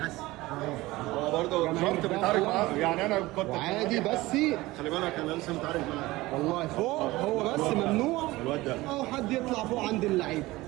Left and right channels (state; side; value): quieter; left; 19.3 dB